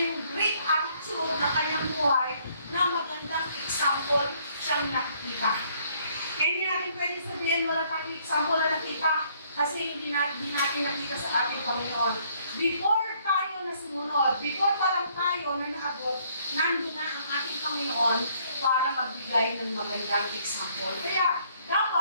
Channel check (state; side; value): inverted; both; correlation -0.65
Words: great attitude ng Kanyang buhay na magandang example siyang nakikita. Kaya hindi natin pwede sabihin wala kang example na nakita kasi hindi natin nakita sa ating Panginoon. Before tayo na sumunod, before pa lang tayo na naabot, nandun na ang ating Panginoon para magbigay ng magandang example. Kaya